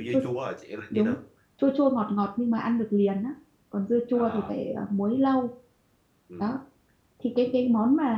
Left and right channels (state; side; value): identical; both; correlation 1.00